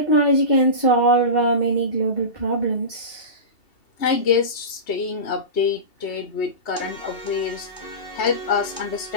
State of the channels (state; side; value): late; right; 2.7 ms